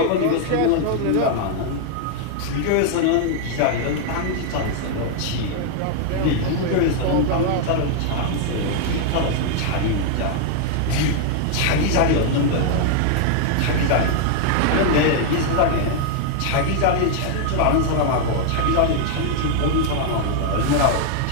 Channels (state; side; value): different; both; correlation 0.00